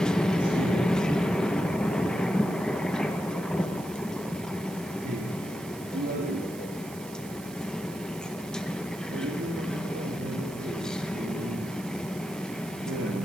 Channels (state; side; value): noise; right; hiss, 17 dB below the sound